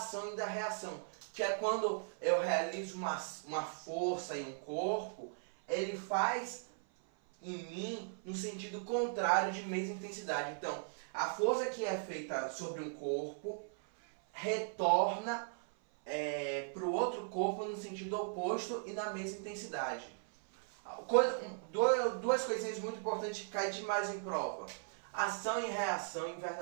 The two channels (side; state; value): left; silent; 53 dB below the other